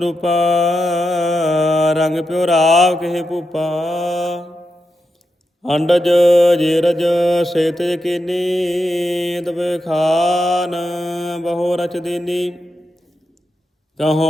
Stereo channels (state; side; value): normal; both; correlation 0.87